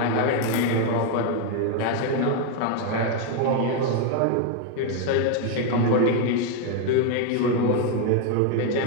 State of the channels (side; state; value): both; different; correlation 0.01